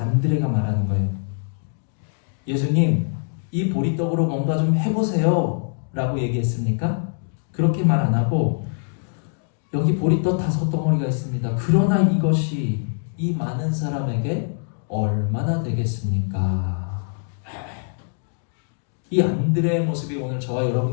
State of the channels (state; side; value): silent; right; 63 dB below the other